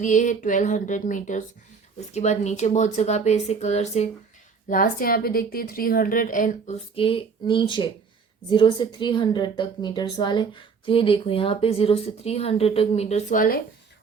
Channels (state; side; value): quieter; left; 5.4 dB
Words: है 1200 मीटर्स। उसके बाद नीचे बहुत जगह पे ऐसे कलर से, लास्ट यहाँ पे देखते हैं 300 एंड उसके नीचे 0 से 300 तक मीटर्स वाले। तो ये देखो, यहाँ पे 0 से 300 तक मीटर्स वाले,